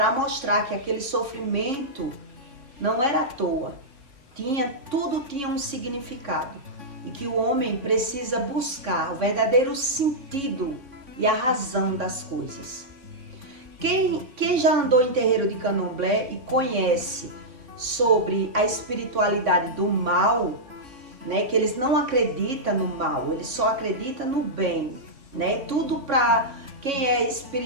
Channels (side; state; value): left; late; 3.7 ms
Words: mostrar que aquele sofrimento não era à toa. Tudo tinha um significado. E que o homem precisa buscar o verdadeiro sentido e a razão das coisas. Quem já andou em terreiro de candomblé e conhece sobre a espiritualidade do mal, né, que eles não acreditam no mal, eles só acreditam no bem, né? Tudo para quem é